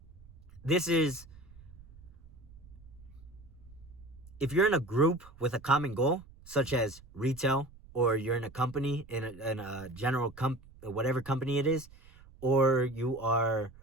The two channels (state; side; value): noise; right; rumble, 22 dB below the sound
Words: if you're in a group with a common goal, such as retail, or you're in a company, in a general whatever company it is, or you are